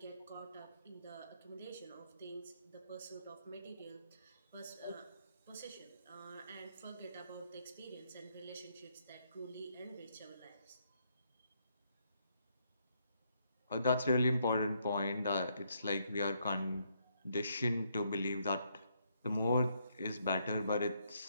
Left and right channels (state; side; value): inverted; both; correlation -0.74